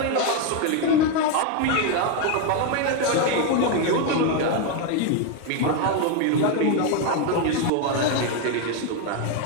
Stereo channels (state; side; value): different; both; correlation 0.01